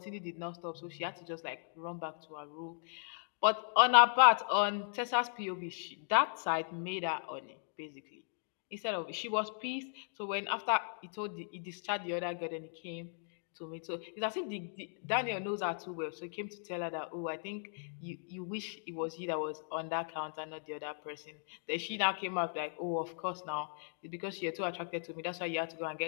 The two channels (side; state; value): right; silent; digital silence